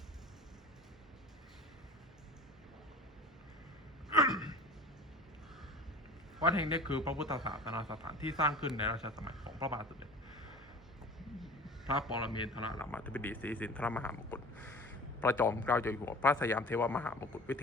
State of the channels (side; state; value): both; normal; correlation 0.41